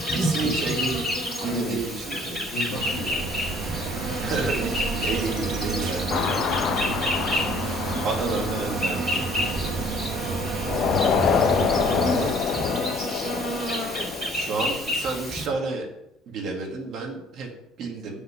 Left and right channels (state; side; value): normal; both; correlation 0.56